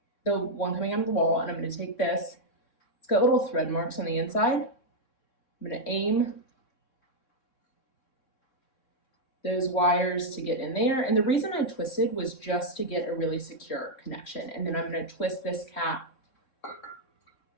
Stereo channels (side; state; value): right; late; 3.6 ms